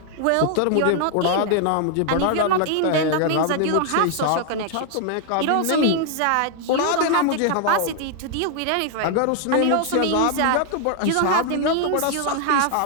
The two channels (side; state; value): both; different; correlation 0.00